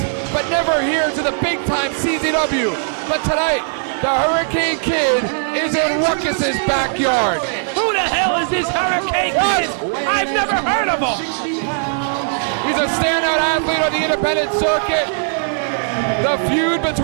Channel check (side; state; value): left; silent; 67 dB below the other